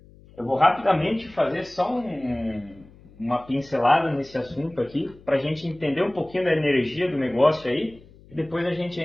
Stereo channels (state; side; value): noise; left; hum, 24 dB below the sound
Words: Eu vou rapidamente fazer só uma pincelada nesse assunto aqui, para a gente entender um pouquinho da energia do negócio aí, e depois a gente